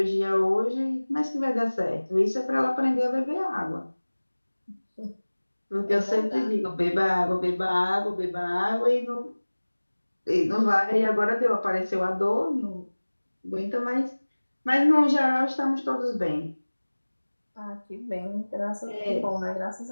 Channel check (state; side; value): inverted; both; correlation -1.00